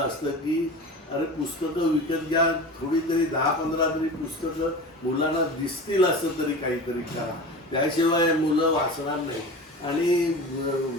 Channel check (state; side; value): normal; both; correlation 0.33